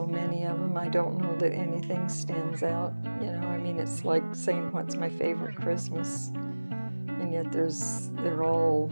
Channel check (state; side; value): inverted; both; correlation -1.00